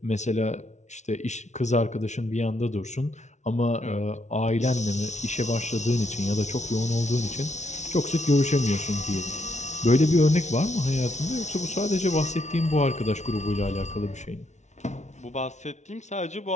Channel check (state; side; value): late; right; 0.33 ms